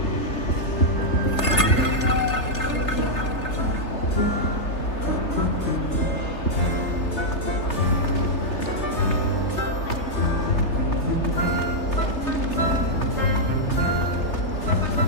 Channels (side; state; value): right; late; 3.3 ms